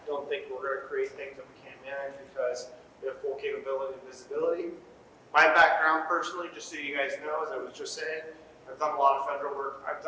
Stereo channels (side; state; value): both; identical; correlation 1.00